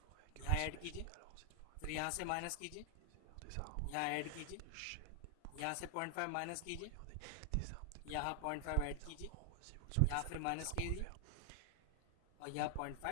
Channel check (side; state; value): both; different; correlation 0.00